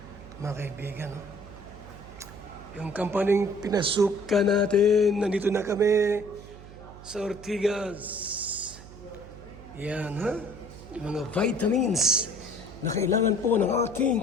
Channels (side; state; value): right; noise; hum, 17 dB below the sound